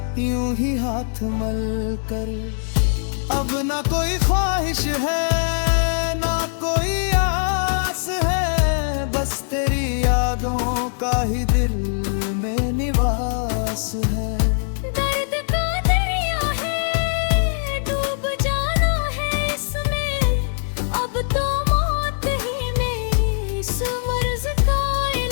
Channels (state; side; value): silent; right; digital silence